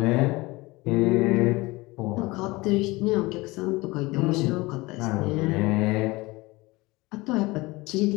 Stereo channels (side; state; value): right; quieter; 22.0 dB